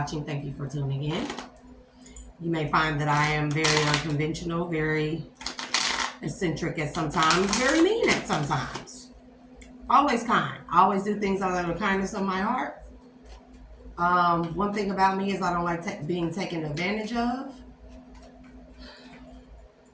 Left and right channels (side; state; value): both; identical; correlation 1.00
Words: Thank you for tuning in. You may find that I am very unconventional, very eccentric at sometimes, very mean at sometimes. Always kind. I always do things out of the kindness of my heart. One thing about me is I don't like being taken advantage of.